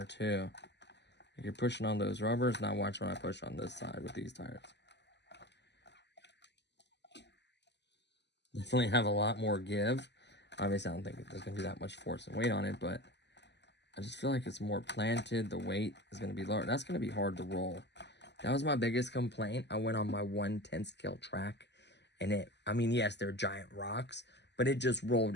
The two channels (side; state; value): right; late; 0.50 ms